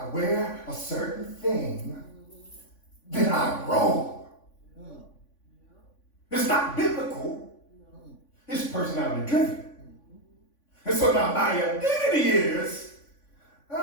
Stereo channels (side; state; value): right; late; 3.5 ms